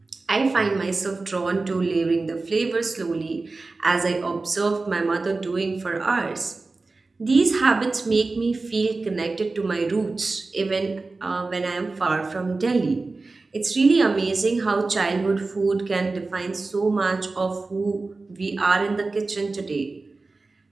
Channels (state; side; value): quieter; left; 3.6 dB